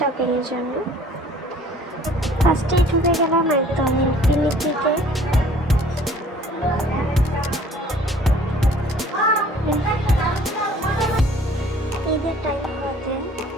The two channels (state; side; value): normal; both; correlation 0.53